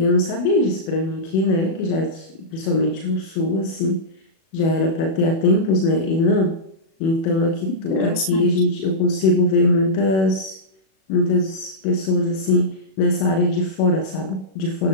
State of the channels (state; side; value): late; right; 37 ms